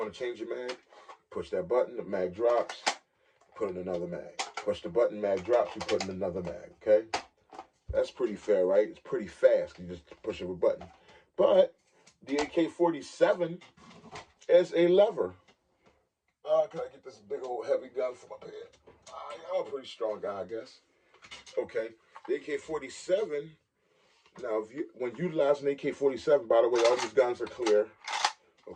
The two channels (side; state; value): both; identical; correlation 1.00